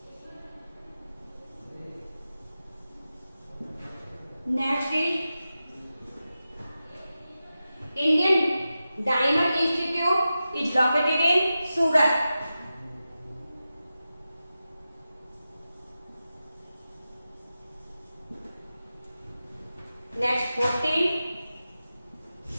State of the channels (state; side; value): inverted; both; correlation -0.93